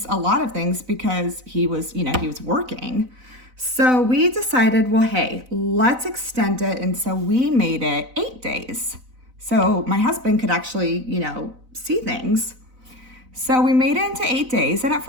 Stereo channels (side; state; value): left; late; 4.0 ms